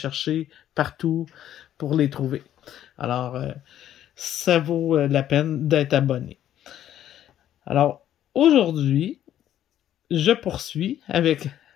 partout pour les trouver. Alors, ça vaut la peine d'être abonné. Alors, aujourd'hui, je poursuis avec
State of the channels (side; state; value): right; quieter; 11.4 dB